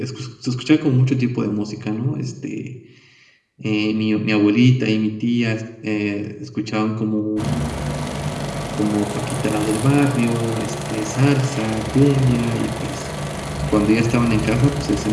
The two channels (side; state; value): both; identical; correlation 1.00